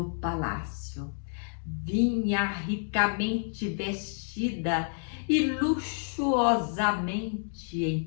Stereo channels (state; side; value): silent; right; 58 dB below the other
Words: palácio. Vinha ricamente vestida e luxuosamente